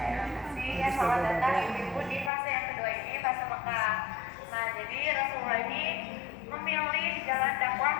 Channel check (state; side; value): drops out; right; at 2.3 s